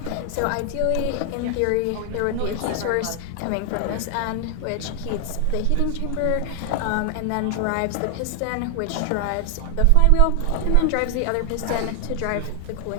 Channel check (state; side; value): different; both; correlation 0.00